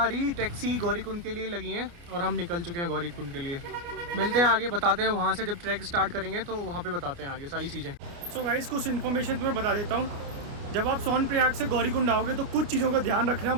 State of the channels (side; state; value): left; late; 29 ms